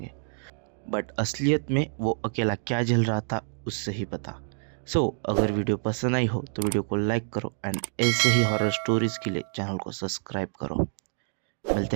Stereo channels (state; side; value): silent; left; digital silence